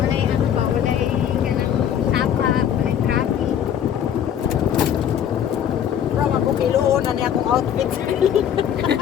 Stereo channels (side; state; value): right; quieter; 9.4 dB